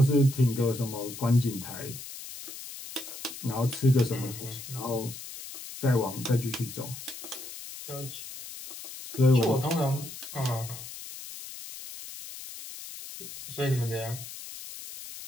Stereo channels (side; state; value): left; noise; hiss, 11 dB below the sound